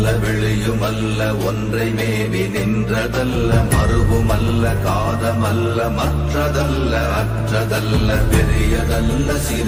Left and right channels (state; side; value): identical; both; correlation 1.00